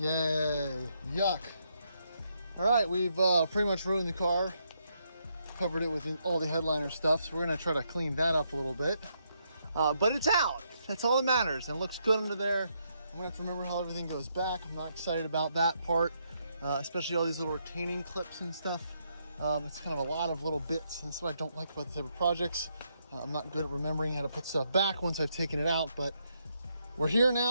Yay, yuck. All right, we've pretty much ruined the car. Covered it with all the headliner stuff, so we're gonna try to clean that up a little bit. But it's out, that's all that matters, and it looks good under there. I'm gonna have to remember how everything goes back. I'm not excited about that part, especially all these little retaining clips and stuff. It's kind of a lot of little bits, and that's what I don't like about the type of projects. I'm not good at remembering how to put stuff back once I've taken it out, but we're here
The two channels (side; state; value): both; inverted; correlation -0.78